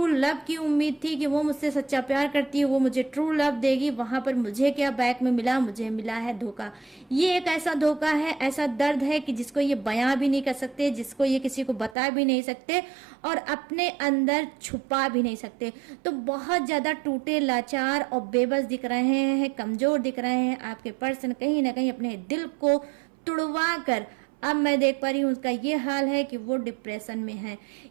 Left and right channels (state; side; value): drops out; left; at 12.0 s